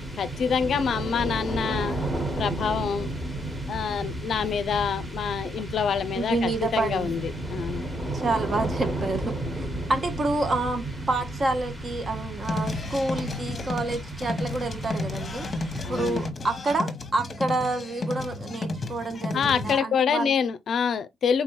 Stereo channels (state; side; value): normal; both; correlation 0.76